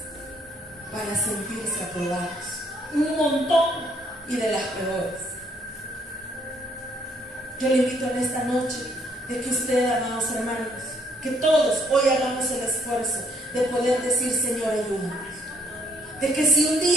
para sentirse aprobados, un montón, y de las peores. Yo le invito en esta noche de que usted, amados hermanos, Que todos hoy hagamos el esfuerzo de poder decir, Señor, ayúdame. De que si un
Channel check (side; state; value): both; normal; correlation 0.67